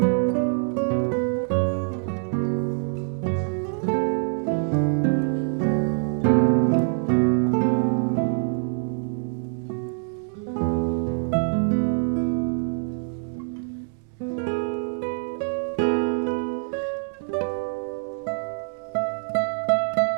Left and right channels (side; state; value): left; silent; 62 dB below the other